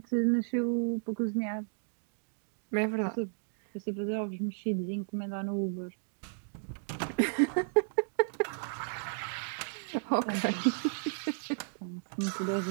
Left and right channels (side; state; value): left; silent; digital silence